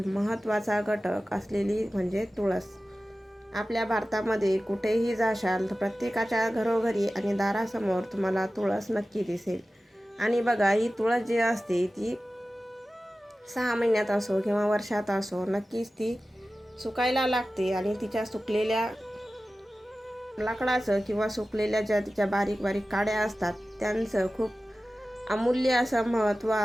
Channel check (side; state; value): both; normal; correlation 0.95